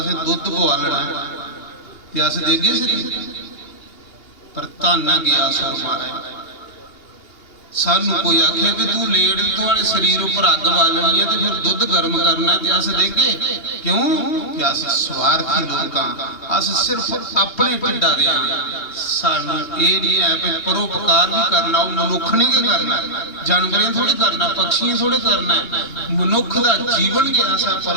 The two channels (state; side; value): late; right; 2.8 ms